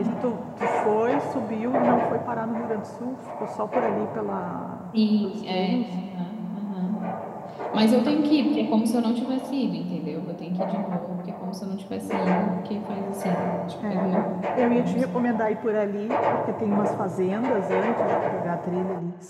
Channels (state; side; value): identical; both; correlation 1.00